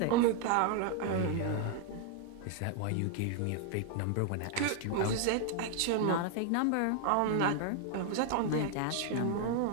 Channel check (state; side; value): different; both; correlation 0.00